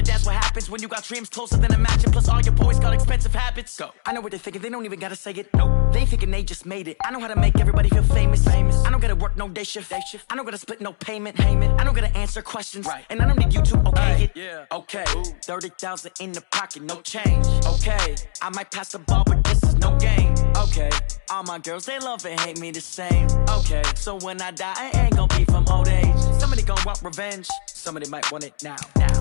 that's what happens when you got dreams closer than a match. And plus all your boys got expensive habits. Go. I know what they're thinking, they don't even gotta say it. Nope. They thinking they just made it. I know how to make everybody feel famous. I don't gotta work no day shift. I don't gotta split no payment. I don't gotta answer questions. And I don't need you to okay it. Okay, 30,000 in the pocket, no change. Okay, I might pass the ball, but this is no game. Okay, all my girls, they love and hate me the same. Okay, so when I die, I ain't gonna be from old age. Somebody gonna want revenge. Somebody might want it now.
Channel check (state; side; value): silent; right; digital silence